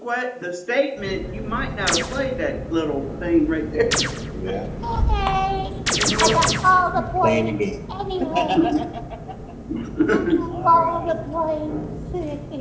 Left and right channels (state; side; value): identical; both; correlation 1.00